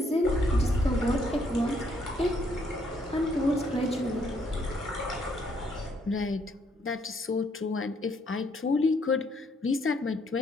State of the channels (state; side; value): normal; both; correlation 0.70